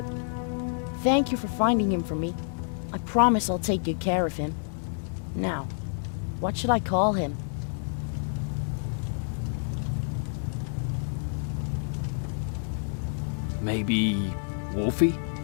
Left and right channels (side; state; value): right; silent; digital silence